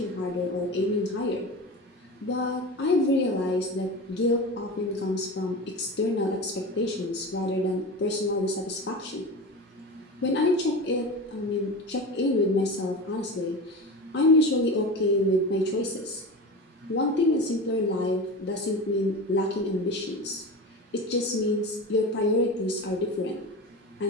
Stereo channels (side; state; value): both; normal; correlation 0.28